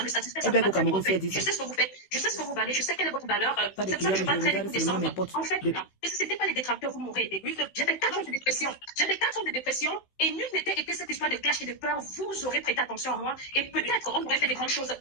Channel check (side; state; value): right; late; 16 ms